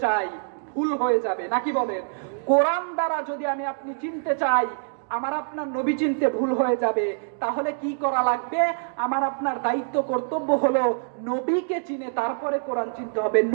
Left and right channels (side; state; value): left; silent; digital silence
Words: চাই, ভুল হয়ে যাবে, নাকি বলেন? কোরআন দ্বারা যদি আমি আপনি চিনতে চাই, আমার আপনার নবী চিনতে ভুল হয়ে যাবে। তাহলে কি করা লাগবে? আমার আপনার দায়িত্ব, কর্তব্য হলো নবীকে চিনে তারপরে কোরআন চিনতে হবে,